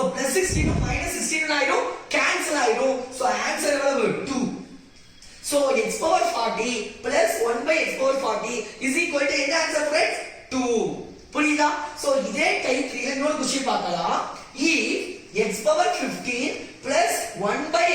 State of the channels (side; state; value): both; identical; correlation 1.00